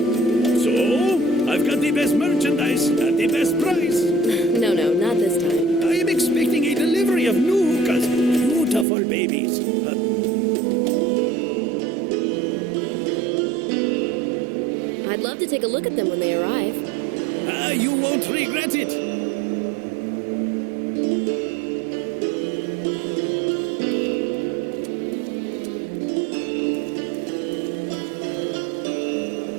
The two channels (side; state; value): left; drops out; at 8.8 s